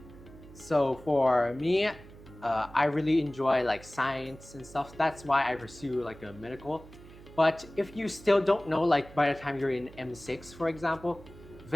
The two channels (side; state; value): right; noise; hum, 19 dB below the sound